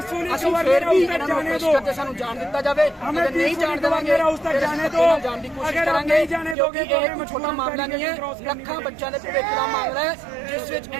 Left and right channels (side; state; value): left; drops out; at 6.6 s